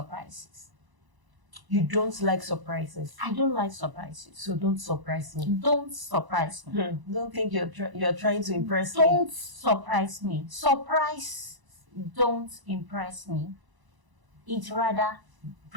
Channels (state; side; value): late; left; 1.0 ms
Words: You don't like surprises? I don't like surprises. So don't surprise me. Don't surprise me. Don't think you're trying to impress me. Don't surprise me. Surprise don't impress me. It rather